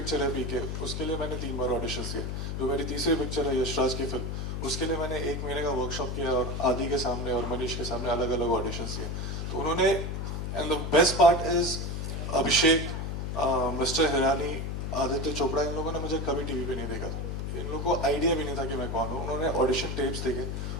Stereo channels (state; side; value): noise; left; hum, 3 dB below the sound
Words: है पीके, उसके लिए मैंने 3 बार ऑडिशंस दिए. जो मेरी तीसरी पिक्चर है यशराज की फिल्म, उसके लिए मैंने 1 महीने का वर्कशॉप किया और आदि के सामने और मनीष के सामने अलग अलग ऑडिशंस दिए. तो उन्होंने, and the best part is Abhishek, mister Hirani, Aditya Chopra, इन लोगों ने मुझे कभी टीवी पे नहीं देखा. इन लोगों को आइडिया भी नहीं था कि मैं कौन हूँ. उन्होंने ऑडिशन टेप्स देखे,